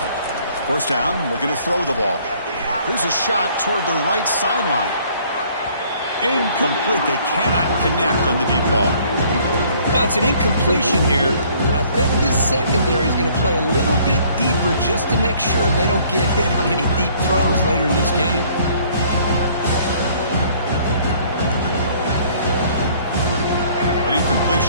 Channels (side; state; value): both; inverted; correlation -0.59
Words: First down, looking to throw the ball. Here's a shot toward the right sideline. Incomplete. They cannot connect on the deep ball. Well, it's an incompletion here, but I bet this secondary is going to play a little bit deeper just to make sure they don't get hit on any deep throws later in this game. An